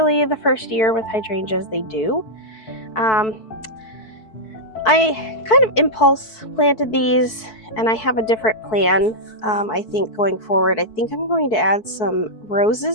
the first year with hydrangeas they do. I kind of impulse planted these, and I have a different plan. I think going forward, I think I'm going to add some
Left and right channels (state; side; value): late; right; 4.6 ms